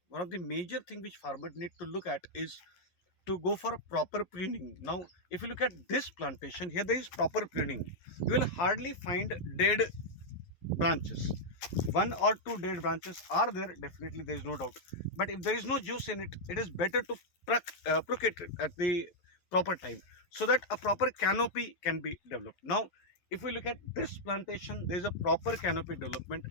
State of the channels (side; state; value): right; late; 11 ms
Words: one of the major thing which farmers need to look at is to go for a proper pruning. Now, if you look at this plantation, here there is proper pruning. You will hardly find dead branches. One or two dead branches are there, definitely there is no doubt. But if there is no juice in it, it is better to pluck it at the proper time so that a proper canopy can be developed. Now, if we look at this plantation, there is a proper canopy development